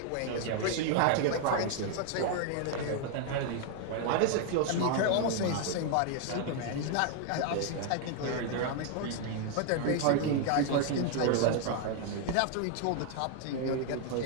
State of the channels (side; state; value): both; different; correlation 0.00